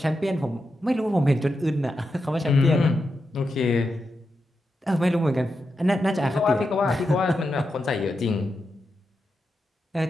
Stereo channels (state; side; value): normal; both; correlation 0.87